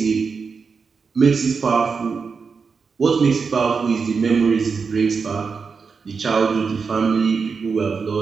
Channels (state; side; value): quieter; left; 5.3 dB